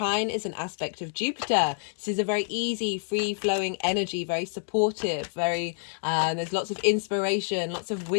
is an aspect of Jupiter. This is a very easy, free-flowing energy, very supportive, there's lots of inspiration, lots of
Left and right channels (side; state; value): right; silent; digital silence